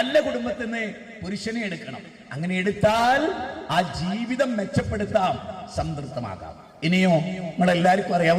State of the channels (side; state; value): both; identical; correlation 1.00